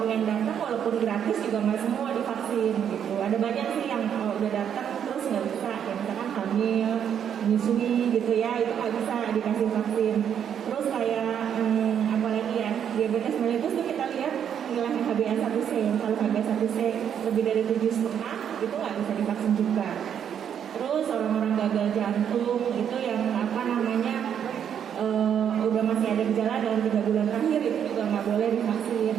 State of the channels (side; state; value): left; quieter; 8.7 dB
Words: datang walaupun gratis juga nggak semua divaksin gitu. Ada banyak sih yang udah datang terus nggak bisa, ya misalkan hamil, menyusui gitu ya, itu nggak bisa dikasih vaksin. Terus kayak apalagi ya, diabetes mellitus tuh kita lihat nilai HbA1c. Kalau HbA1c lebih dari 7,5 itu nggak bisa divaksin juga. Terus orang-orang gagal jantung itu yang udah masih ada gejala dalam 3 bulan terakhir itu juga nggak boleh divaksin